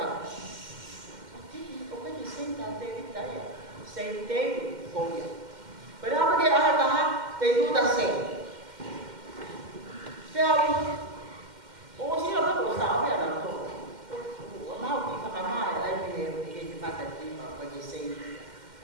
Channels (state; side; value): late; left; 2.1 ms